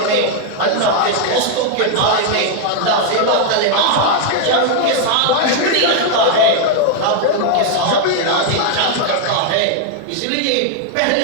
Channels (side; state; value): both; different; correlation 0.00